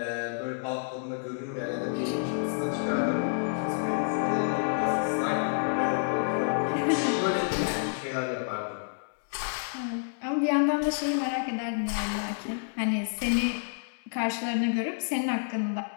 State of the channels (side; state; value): right; silent; digital silence